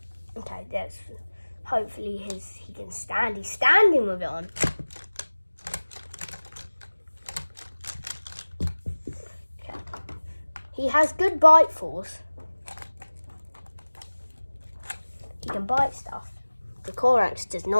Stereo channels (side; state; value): both; inverted; correlation -1.00